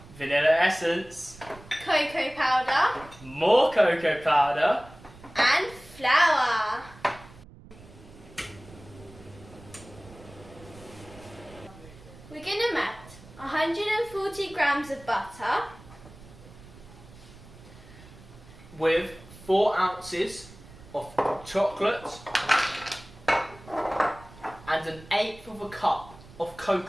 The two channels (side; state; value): right; noise; rumble, 20 dB below the sound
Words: vanilla essence, cocoa powder more cocoa powder, and flour. We're going to melt 140 grams of butter with 4 ounces of chocolate and 1/8 of a cup of